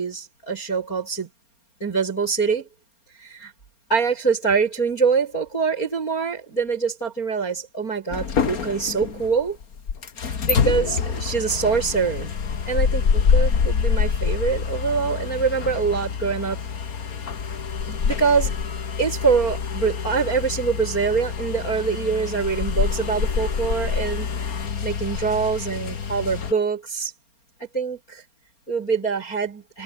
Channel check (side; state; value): right; late; 4.3 ms